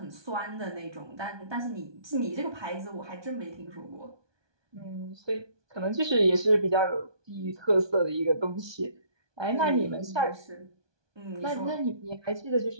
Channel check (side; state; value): left; late; 1.2 ms